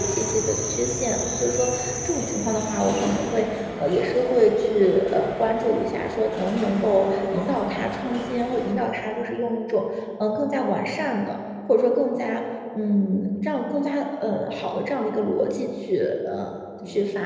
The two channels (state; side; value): identical; both; correlation 1.00